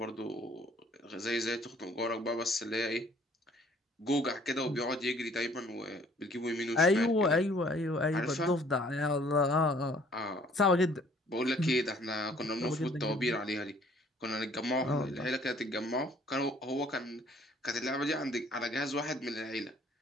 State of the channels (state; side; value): normal; both; correlation 0.58